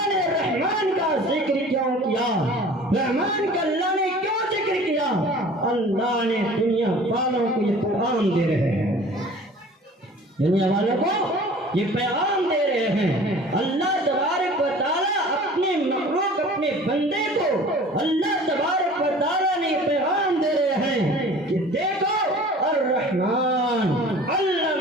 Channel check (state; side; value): normal; both; correlation 0.45